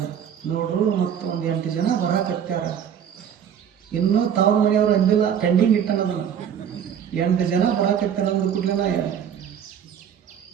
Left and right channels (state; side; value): quieter; left; 8.7 dB